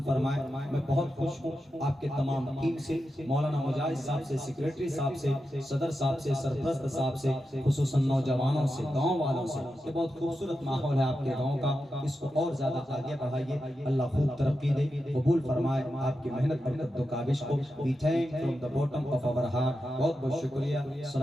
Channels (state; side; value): normal; both; correlation 0.89